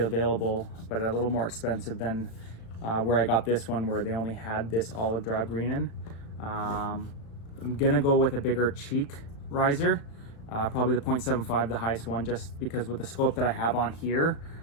but a little more expensive than where I got this one, where they only had this olive drab green in. I'm gonna go with a bigger cheek riser. Probably the 0.75, the highest one, just because with the scope that I have on here,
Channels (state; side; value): late; right; 36 ms